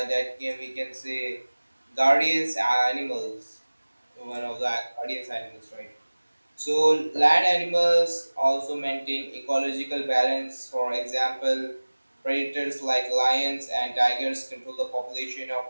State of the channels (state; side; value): inverted; both; correlation -1.00